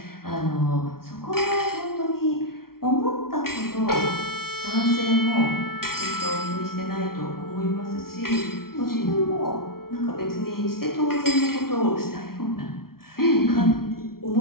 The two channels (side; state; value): right; late; 0.93 ms